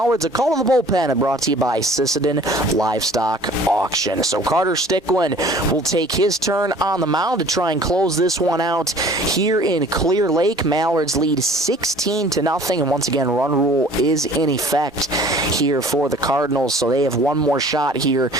A call to the bullpen brought to you by Sisseton Livestock Auction. So Carter Stickland will take his turn on the mound to try and close this one out here in Clear Lake. Mallards lead 16-0, and once again, run rule is in effect here for the Cardinals. So they have one more shot here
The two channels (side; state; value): both; normal; correlation 0.49